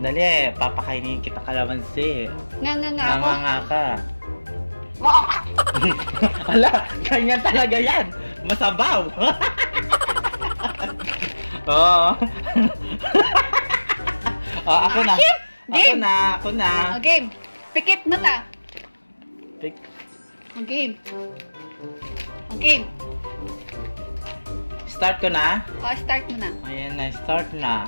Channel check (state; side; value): inverted; both; correlation -1.00